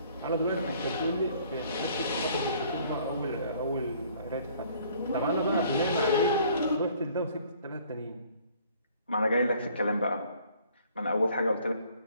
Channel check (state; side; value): inverted; both; correlation -0.59